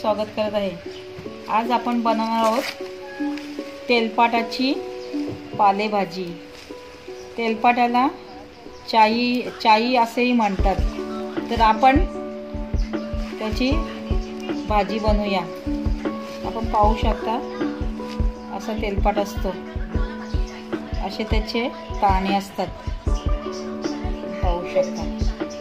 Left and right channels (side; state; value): both; identical; correlation 1.00